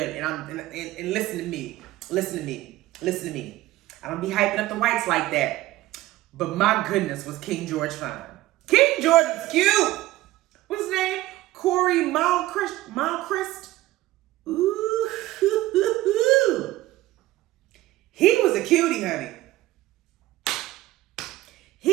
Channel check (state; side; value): quieter; left; 16.6 dB